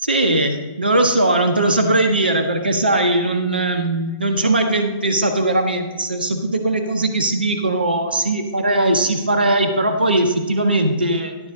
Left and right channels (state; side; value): inverted; both; correlation -0.58